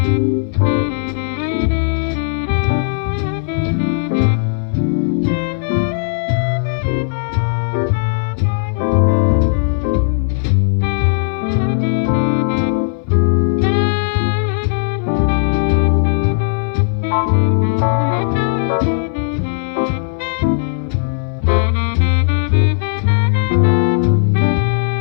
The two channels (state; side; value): silent; right; 61 dB below the other